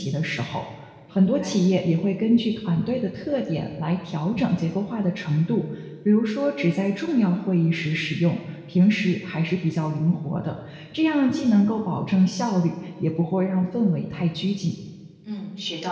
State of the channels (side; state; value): both; identical; correlation 1.00